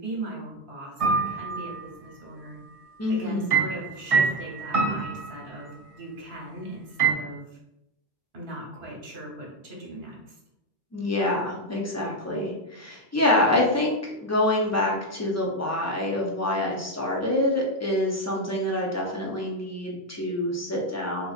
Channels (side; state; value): both; normal; correlation 0.07